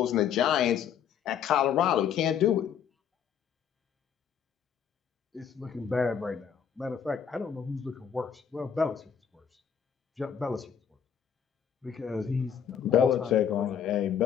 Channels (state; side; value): quieter; right; 8.2 dB